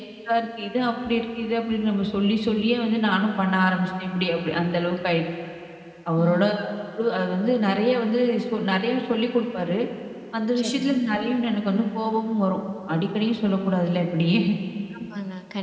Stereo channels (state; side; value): identical; both; correlation 1.00